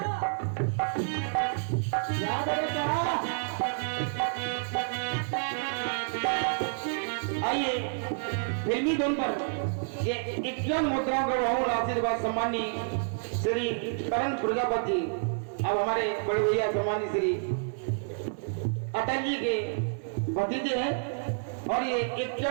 क्या बोले क्या? आइए फिल्मी धुन पर ये 51 मुद्राओं का बहुमूल्य आशीर्वाद सम्मानी श्री करण प्रजापति अब हमारे बड़े भैया सम्मानी श्री अटल जी के भतीजे हैं और ये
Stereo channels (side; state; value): left; silent; 58 dB below the other